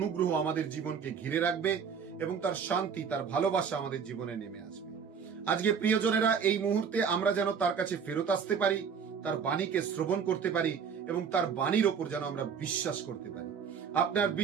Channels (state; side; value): quieter; left; 6.7 dB